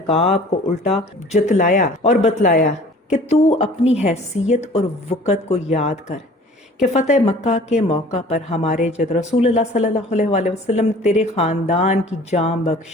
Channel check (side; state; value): both; normal; correlation 0.48